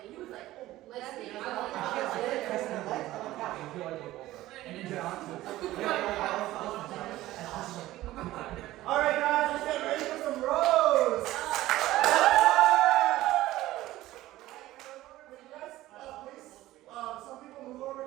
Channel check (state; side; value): quieter; left; 16.1 dB